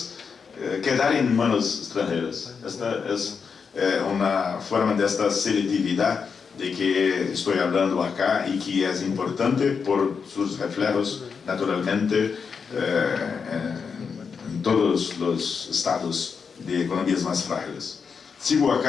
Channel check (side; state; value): right; quieter; 5.8 dB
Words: quedar en manos extranjeras. Esta es una forma de esta selectividad de que estoy hablando acá y que es importante por sus reflejos naturalmente en todos los estados de economías más frágiles. Sigo